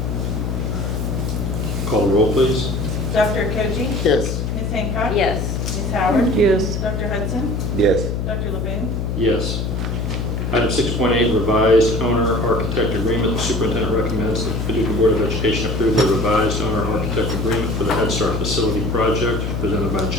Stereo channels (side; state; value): left; noise; hum, 1 dB below the sound